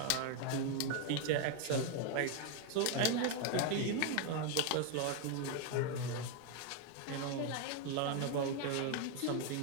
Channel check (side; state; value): both; different; correlation 0.01